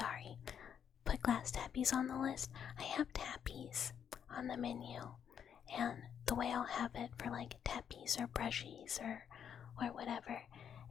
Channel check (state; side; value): quieter; right; 8.3 dB